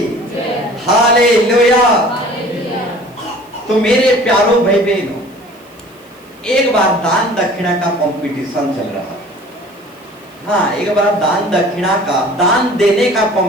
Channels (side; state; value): right; noise; hiss, 29 dB below the sound